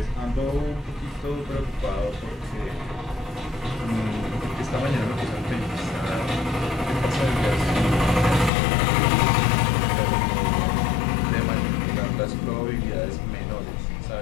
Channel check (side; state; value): right; drops out; at 8.5 s